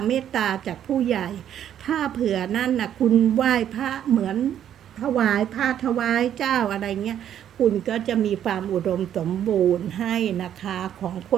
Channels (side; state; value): left; quieter; 10.2 dB